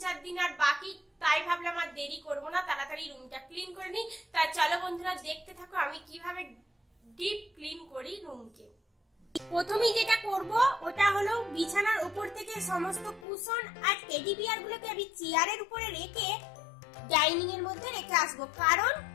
দিন আর বাকি, তাই ভাবলাম আর দেরি করব না, তাড়াতাড়ি রুমটা ক্লিন করে নিই। তাই চলো বন্ধুরা দেখতে থাকো আমি কিভাবে ডিপ ক্লিন করি রুমকে। প্রথমেই যেটা করব ওটা হলো বিছানার উপর থেকে সমস্ত কুশন আর টেডি বিয়ার গুলোকে আমি চেয়ারের উপরে রেখে ডাইনিং এর মধ্যে রেখে আসবো, কারণ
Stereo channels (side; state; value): right; drops out; at 13.2 s